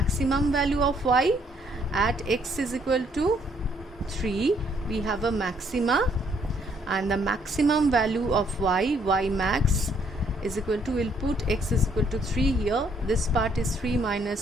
value of y? At x is equal to 3 we have a maxima, and the maximum value of y max is equal to, we'll put x is equal to 3 here, this part is 3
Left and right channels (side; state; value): both; normal; correlation 0.68